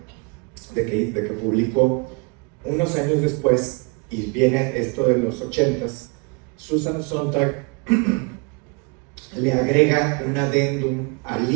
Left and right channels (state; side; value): quieter; left; 31.0 dB